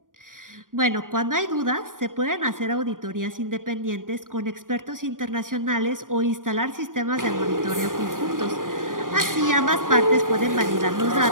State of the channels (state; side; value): late; left; 0.89 ms